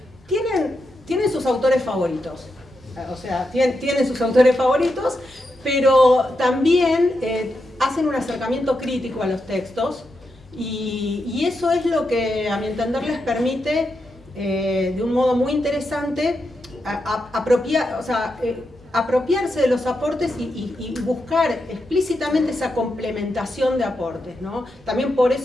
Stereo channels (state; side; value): normal; both; correlation 0.85